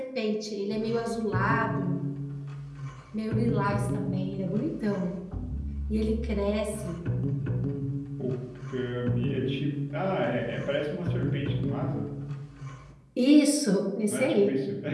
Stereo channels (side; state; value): both; identical; correlation 1.00